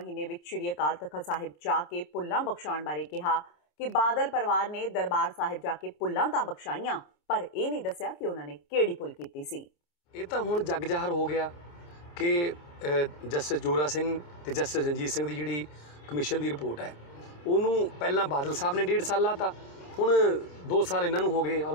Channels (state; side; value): late; right; 27 ms